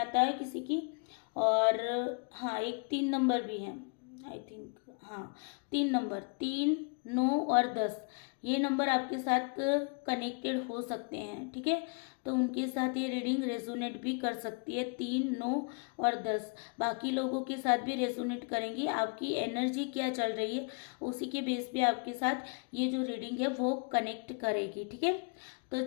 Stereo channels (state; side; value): quieter; right; 37.4 dB